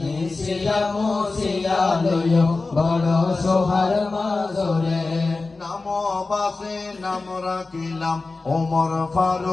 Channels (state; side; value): quieter; right; 3.7 dB